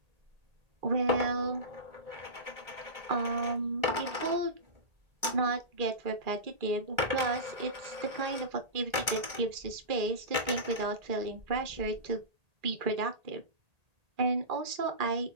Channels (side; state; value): left; late; 1.8 ms